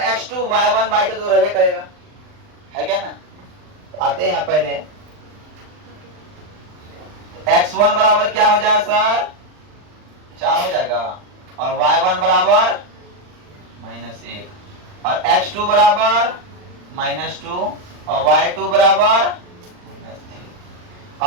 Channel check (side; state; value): left; late; 39 ms